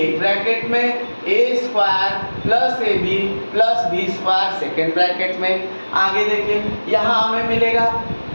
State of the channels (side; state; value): both; inverted; correlation -1.00